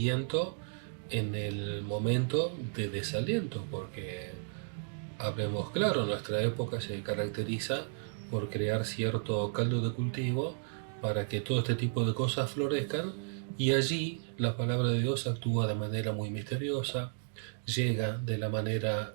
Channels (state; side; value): silent; left; digital silence